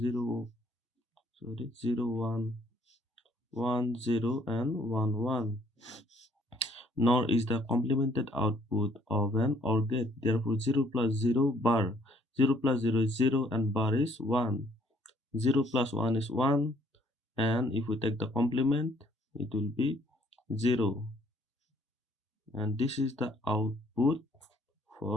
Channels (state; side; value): normal; both; correlation 0.64